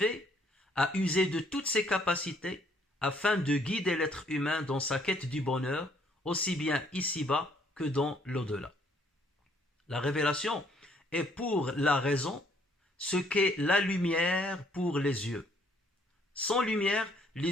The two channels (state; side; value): normal; both; correlation 0.65